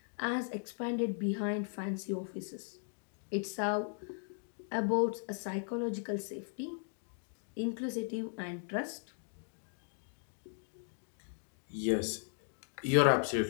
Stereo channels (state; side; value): silent; right; 53 dB below the other